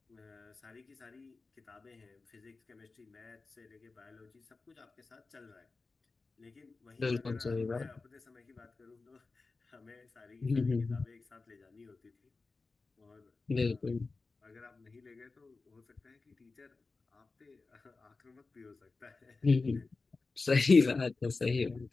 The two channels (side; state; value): right; quieter; 3.9 dB